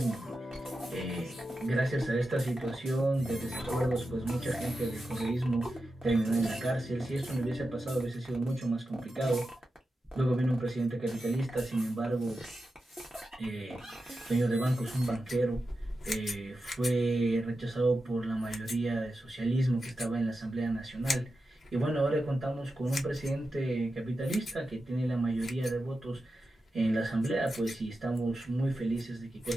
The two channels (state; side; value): normal; both; correlation 0.91